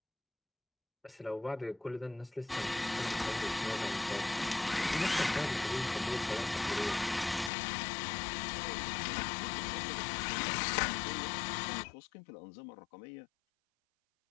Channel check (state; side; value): drops out; right; at 7.5 s